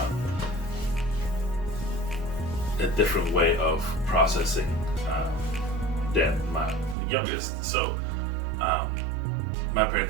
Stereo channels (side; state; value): left; drops out; at 7.0 s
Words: a different way of processing than my youngest. So my